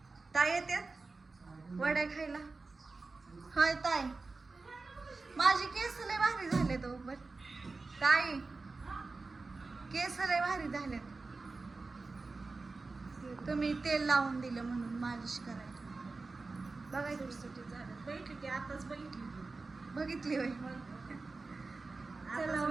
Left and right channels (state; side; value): quieter; left; 3.8 dB